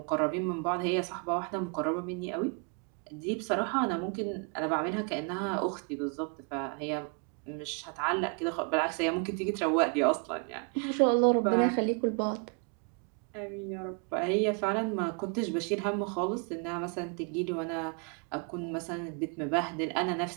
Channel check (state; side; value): quieter; left; 36.2 dB